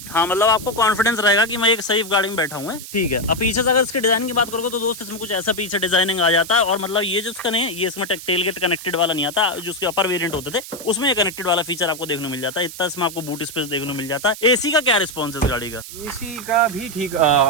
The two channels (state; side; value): noise; right; hiss, 12 dB below the sound